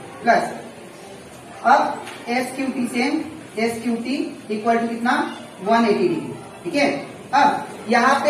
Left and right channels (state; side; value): identical; both; correlation 1.00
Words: प्लस, अब S Q T equal to कितना, 180 डिग्री। ठीक है, अब यहाँ